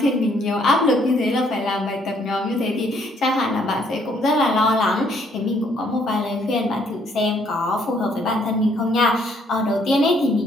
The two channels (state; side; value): normal; both; correlation 0.67